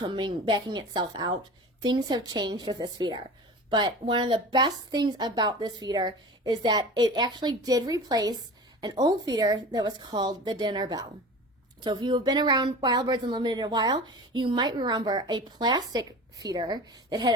itself out. Things have changed with this feeder. But one of the best things about this feeder is that it actually did replace an old feeder that was called the dinner bell. So if you have been around Wild Birds Unlimited a while, you might remember a plastic feeder that had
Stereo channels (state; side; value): normal; both; correlation 0.35